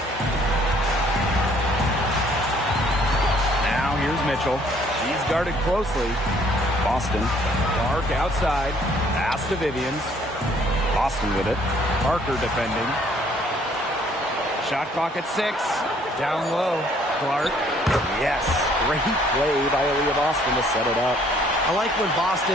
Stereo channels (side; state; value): both; normal; correlation 0.62